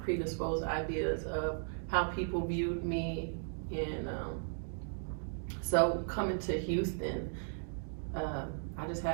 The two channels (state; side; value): silent; left; digital silence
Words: predisposed ideas of how people viewed me, and so coming to Houston, I just